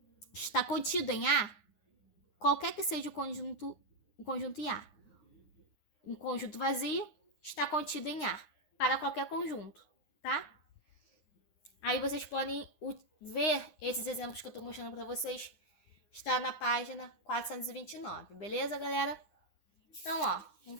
está contido em A, qualquer que seja o conjunto em A, um conjunto vazio está contido em A, para qualquer conjunto, tá? Aí vocês podem ver esses exemplos que eu estou mostrando para vocês, está na página 429, beleza, galera? Então, ó,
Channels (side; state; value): right; late; 9.7 ms